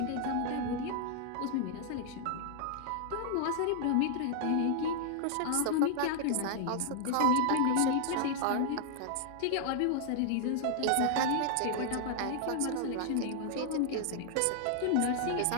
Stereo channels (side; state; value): both; different; correlation 0.00